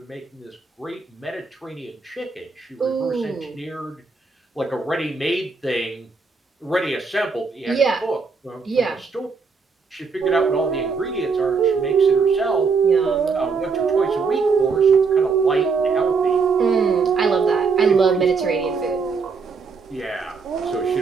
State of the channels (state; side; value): quieter; left; 4.9 dB